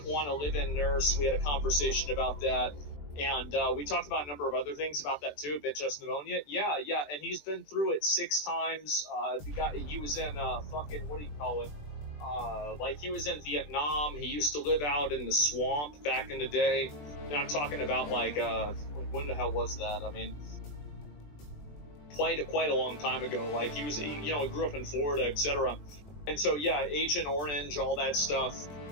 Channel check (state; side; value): late; right; 20 ms